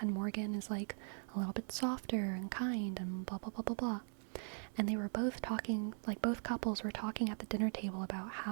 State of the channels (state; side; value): silent; left; 51 dB below the other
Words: and Morgan is like a little bit softer and kind and blah blah blah blah blah. And they were both talking, like both couples were talking at the dinner table about